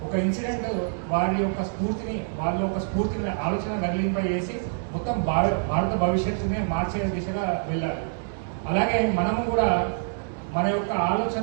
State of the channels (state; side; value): silent; left; digital silence